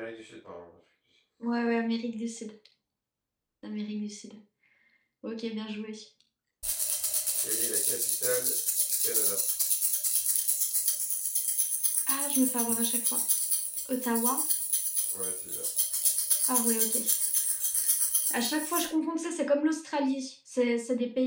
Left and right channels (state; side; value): identical; both; correlation 1.00